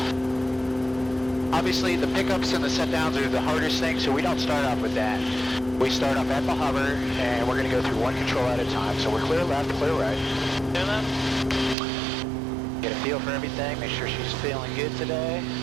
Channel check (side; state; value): left; drops out; at 11.8 s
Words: Obviously the pickups and the set downs are the hardest thing, so we don't start off with that. We start off at the hover and we're going to go through one control at a time. So we're clear left, clear right. Clear left. Get a feel for everything, make sure she's feeling good today.